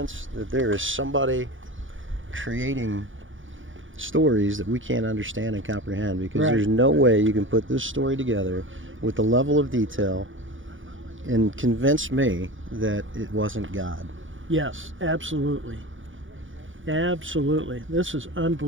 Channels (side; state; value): left; late; 0.57 ms